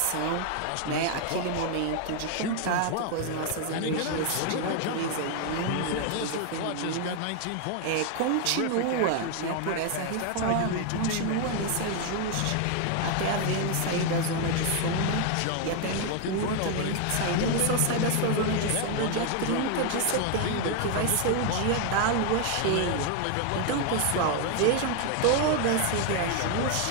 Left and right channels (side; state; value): both; different; correlation 0.00